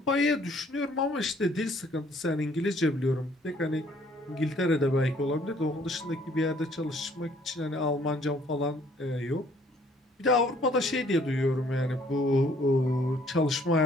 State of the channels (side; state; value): both; normal; correlation 0.61